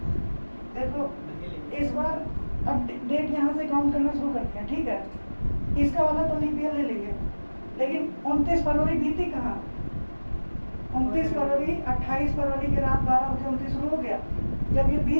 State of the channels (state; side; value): inverted; both; correlation -1.00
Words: देखो, इस बार अब डेट यहाँ से काउंट करना शुरू करते हैं, ठीक है। इसका वाला तो लीप ईयर ले लेंगे, लेकिन 29 फरवरी बीती कहाँ? 29 फरवरी 28 फरवरी की रात 12 बजे 29 शुरू हो गया। जब ये